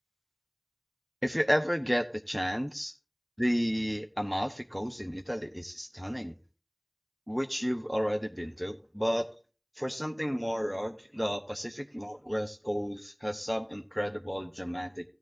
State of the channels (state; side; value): identical; both; correlation 1.00